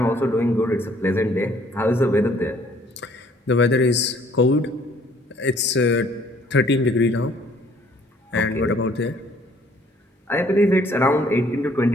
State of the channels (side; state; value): both; normal; correlation 0.60